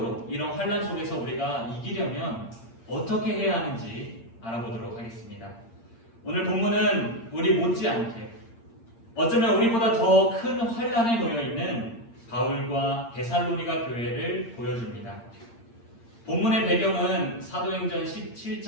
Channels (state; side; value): late; right; 8.7 ms